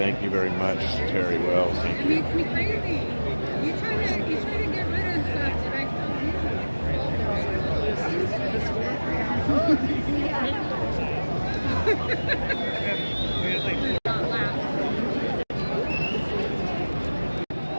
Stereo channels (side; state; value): both; inverted; correlation -1.00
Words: you very much, Terry Wells. Thank It you. makes me crazy. You try to get rid of stuff that I